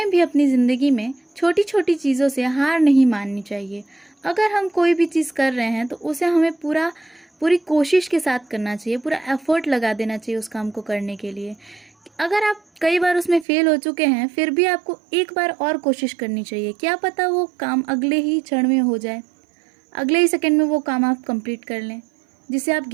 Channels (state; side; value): drops out; left; at 13.5 s